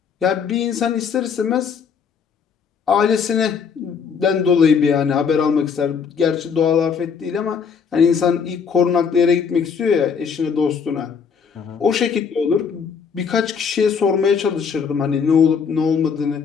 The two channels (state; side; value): quieter; right; 6.3 dB